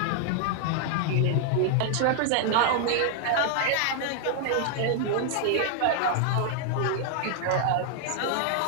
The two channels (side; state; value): both; different; correlation 0.00